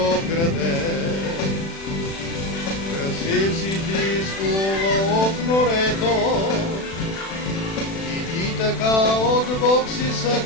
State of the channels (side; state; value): right; late; 36 ms